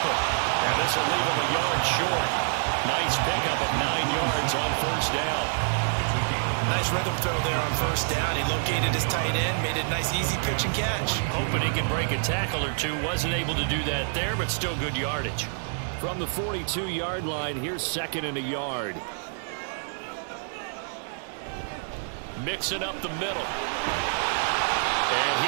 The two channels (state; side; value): silent; left; digital silence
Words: And this will leave him a yard short. Nice pickup of 9 yards on first down. Nice rhythm throw there on first down. He located his tight end, made it a nice easy pitch and catch. Hoping he can break a tackle or two. Wasn't able to do that there, but still good yardage. From the 42-yard line, here's 2nd and a yard. Mixing up the middle. And